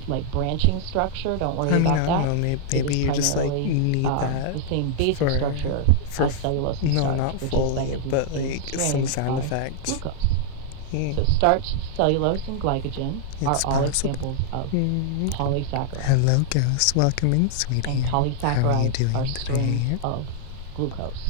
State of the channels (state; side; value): different; both; correlation -0.01